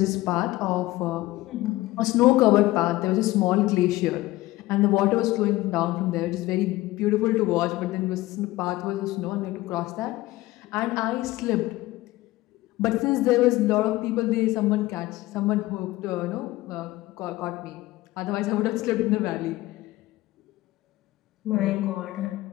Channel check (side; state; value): right; quieter; 18.0 dB